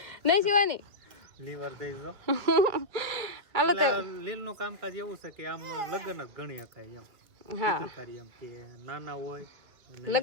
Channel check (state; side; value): late; left; 2.1 ms